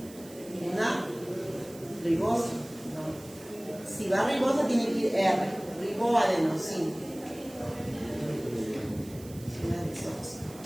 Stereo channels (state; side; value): noise; right; hiss, 20 dB below the sound